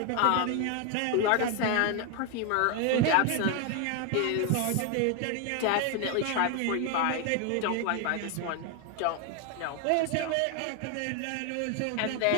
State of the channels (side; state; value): both; different; correlation 0.01